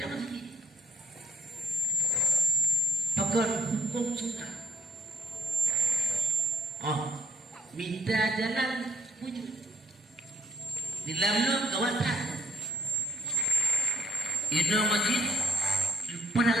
lagi pakar hukum sunnah minta jalan wujud di dalam kawasan ini masjid pernah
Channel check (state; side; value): normal; both; correlation 0.67